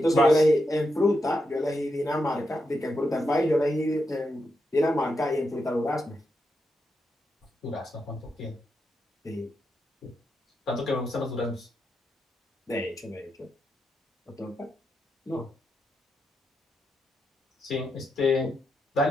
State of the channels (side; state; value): both; normal; correlation 0.85